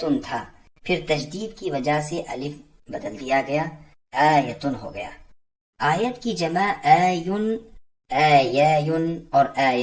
تھا، پھر تجدید کی وجہ سے الف بدل دیا گیا، آیتن ہو گیا۔ آیت کی جمع آیون، آیاون اور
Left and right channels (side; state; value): both; identical; correlation 1.00